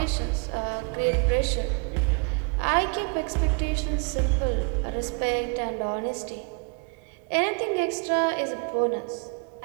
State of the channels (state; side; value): quieter; left; 35.3 dB